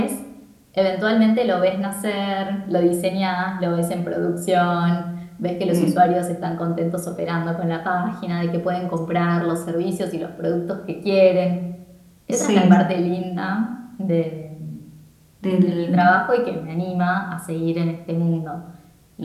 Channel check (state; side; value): identical; both; correlation 1.00